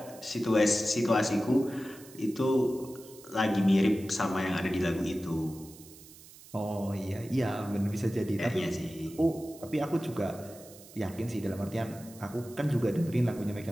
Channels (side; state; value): right; noise; hiss, 20 dB below the sound